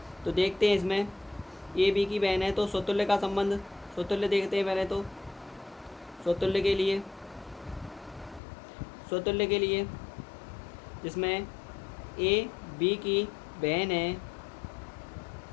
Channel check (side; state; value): right; drops out; at 8.4 s